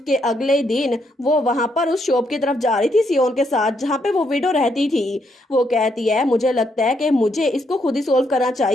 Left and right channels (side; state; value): both; normal; correlation 0.76